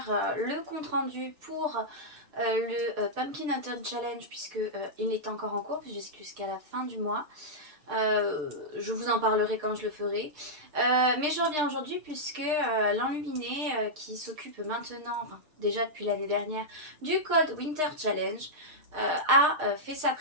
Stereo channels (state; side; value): late; left; 6.6 ms